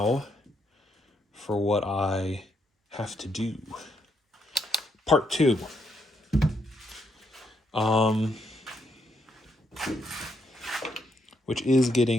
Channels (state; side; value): normal; both; correlation 0.77